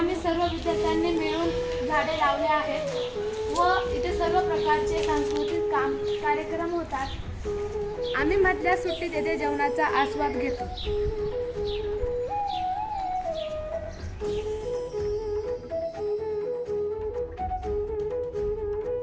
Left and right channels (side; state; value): both; identical; correlation 1.00